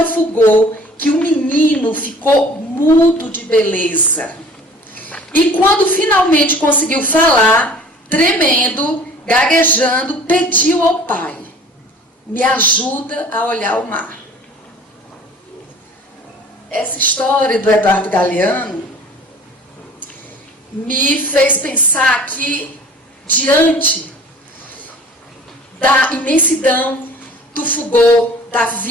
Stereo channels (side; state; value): both; normal; correlation 0.47